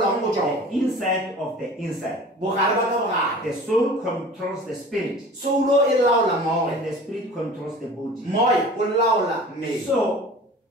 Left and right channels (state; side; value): normal; both; correlation 0.42